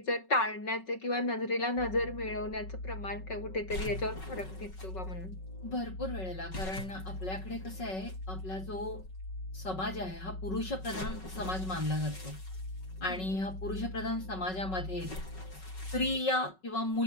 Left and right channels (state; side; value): late; right; 5.4 ms